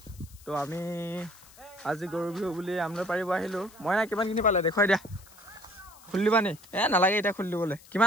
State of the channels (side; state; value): left; noise; hiss, 23 dB below the sound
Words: তো আমি আজি গৰু বিহু বুলি আমলৈ পাৰিব আহিলোঁ মইনা কিমানখিনি পালে দেখুৱাই দিয়া খুলি দিবা নি নালাগে এতিয়া খুলি দিবলৈ